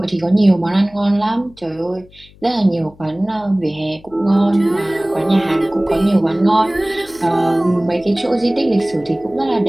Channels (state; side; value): noise; left; hum, 26 dB below the sound